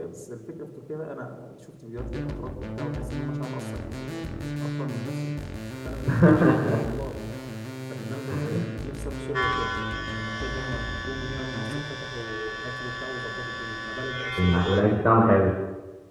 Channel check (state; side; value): identical; both; correlation 1.00